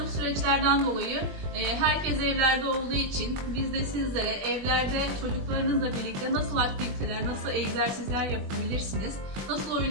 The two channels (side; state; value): left; late; 21 ms